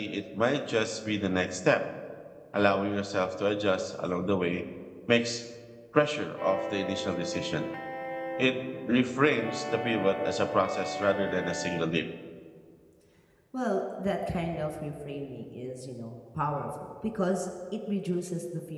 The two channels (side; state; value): both; identical; correlation 1.00